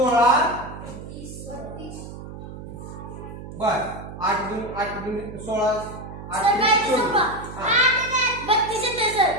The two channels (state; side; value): noise; right; hum, 12 dB below the sound